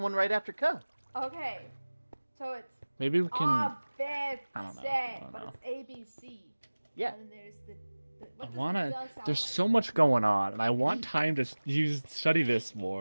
right after K. Okay. So it's Maybe we can. I I don't know. but it's ABC. Yeah. And then there's the I what does wanna. the sound There's like? so much going on, and I want time to study this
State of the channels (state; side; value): inverted; both; correlation -1.00